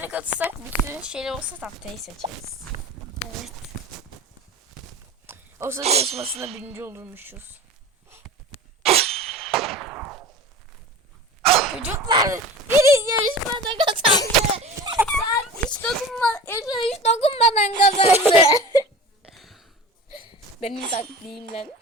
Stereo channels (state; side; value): normal; both; correlation 0.36